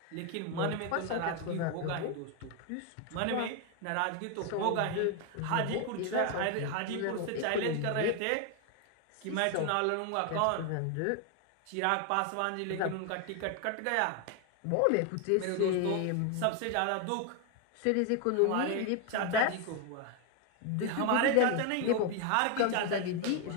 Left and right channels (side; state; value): both; different; correlation 0.01